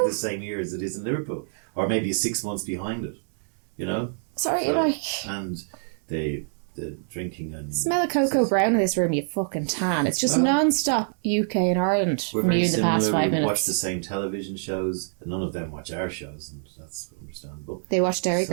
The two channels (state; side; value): silent; left; digital silence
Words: the same year as it is in Liverpool, or maybe 6 months behind it. And the drinking and... Smell of cocoa brown in this room, you fucking tan. It's just non-stop UK and Ireland we're from very you in the similar. past 5 we minutes. Watch the same television shows, and none of them watch our shows, and that's understandable. They watch Dairy